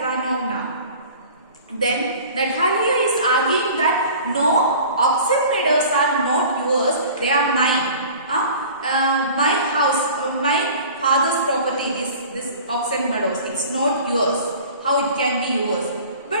Then Natalia is arguing that no, oxen meadows are not yours, they are mine. My house, my father's property is this oxen meadows, it's not yours. How it can be yours? But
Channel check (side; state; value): both; inverted; correlation -0.43